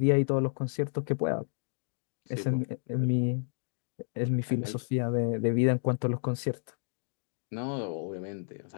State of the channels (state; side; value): silent; right; digital silence